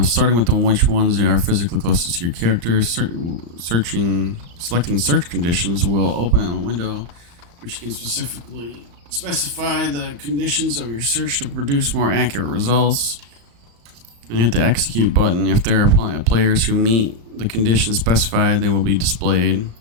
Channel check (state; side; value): late; left; 35 ms